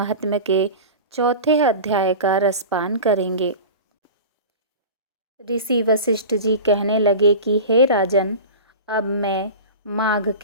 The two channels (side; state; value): both; inverted; correlation -0.32